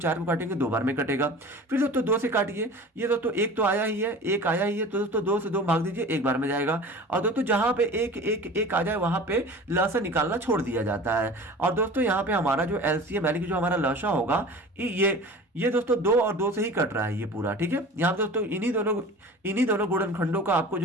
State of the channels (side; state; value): both; normal; correlation 0.38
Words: को काटेंगे 2 बार में कटेगा। फिर दोस्तों 2 से काटिए, ये दोस्तों 1 तो आया ही है, 1 आया ही है, तो दोस्तों 2 से 2 भाग दीजिए, 1 बार में जाएगा। और दोस्तों जहां पे 1, 1, 1 आ जाए वहां पे लसा निकालना छोड़ दिया जाता है। और दोस्तों यहाँ पे हमारा जो एलसीएम यानी कि जो हमारा लसा होगा ये दोस्तों 2 और 2 से ही कट रहा है ये पूरा, ठीक है। यहाँ दोस्तों इन्हीं दोनों गुणनखंडों का आपको